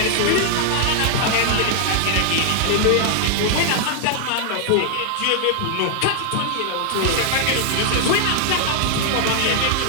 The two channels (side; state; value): both; different; correlation 0.00